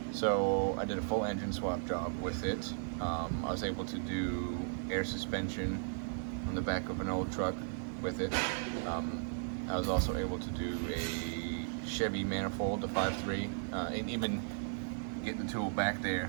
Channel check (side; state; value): left; silent; 54 dB below the other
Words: So I did a full engine swap job with it. I was able to do air suspension on the back of an old truck with it. I was also able to do a Chevy manifold, the 5.3, and even get the tool back